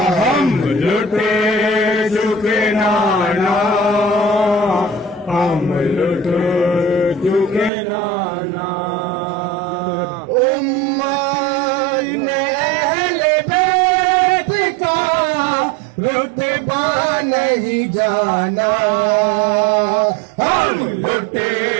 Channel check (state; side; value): drops out; left; at 7.7 s